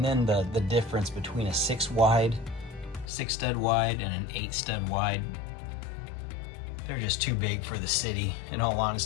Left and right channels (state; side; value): drops out; right; at 3.1 s